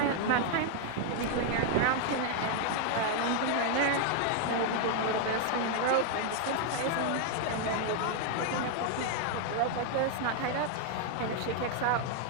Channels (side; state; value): both; different; correlation 0.00